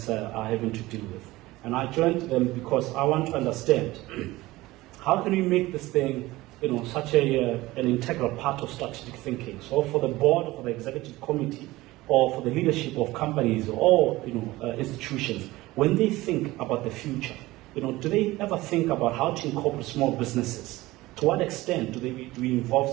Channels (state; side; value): quieter; left; 18.8 dB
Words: are having to deal with. And I joined them because I want to understand how can we make this thing such an integral part of strategic thinking. So for the board, or for the executive committee, or for the leadership of companies or institutions, when they think about the future, do they ever think about how to incorporate small businesses? To what extent do we involve